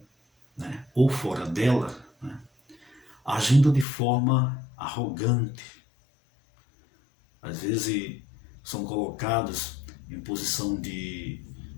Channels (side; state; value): right; drops out; at 3.9 s